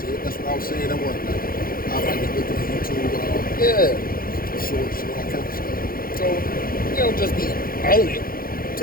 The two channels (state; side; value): late; right; 0.42 ms